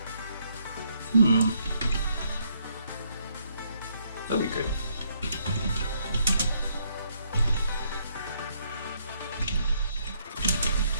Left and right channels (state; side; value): inverted; both; correlation -0.70